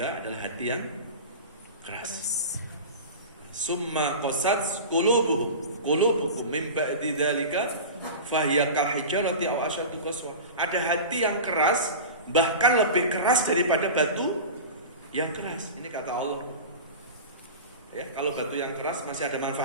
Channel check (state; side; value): inverted; both; correlation -0.31